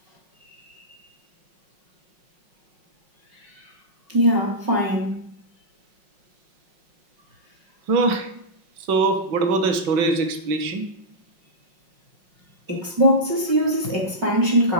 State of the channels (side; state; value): left; late; 5.6 ms